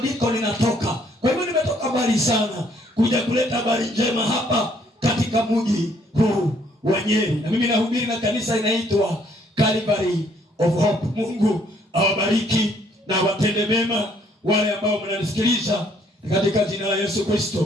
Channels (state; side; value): normal; both; correlation 0.65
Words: ninatoka. Kwa hivyo nimetoka mbali sana kuja kuleta habari njema hapa katika mji huu wa Nyeri, na mimi nahubiri na kanisa inaitwa Calvary of Hope. Mungu awabariki na watende mema wale ambao mnanisikiliza katika jina la Yesu